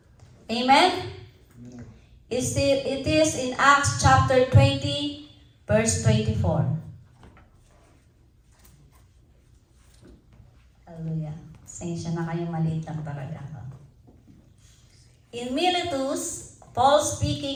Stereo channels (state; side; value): identical; both; correlation 1.00